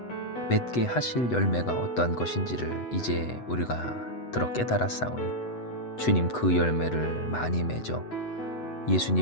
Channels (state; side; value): late; right; 8.1 ms